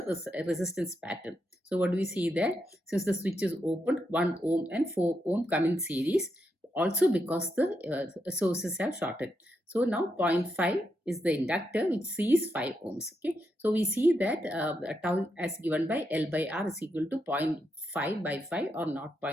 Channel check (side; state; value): both; normal; correlation 0.82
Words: resistance pattern. So what do we see there? Since the switch is opened, 1 ohm and 4 ohm come in series, also because the sources have shorted. So now 0.5 is the inductor which sees 5 ohms. Okay, so we see that tau as given by L by R is equal to 0.5 by 5 or